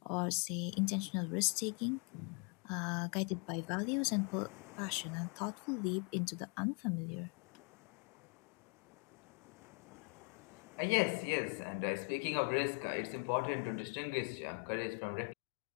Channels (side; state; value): right; quieter; 35.7 dB